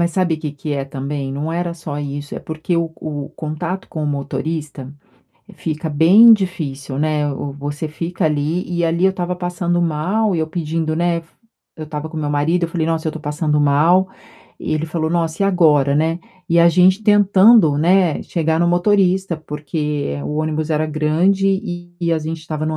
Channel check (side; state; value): both; identical; correlation 1.00